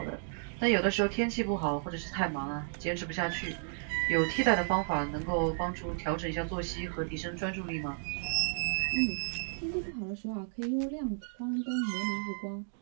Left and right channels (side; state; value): left; silent; digital silence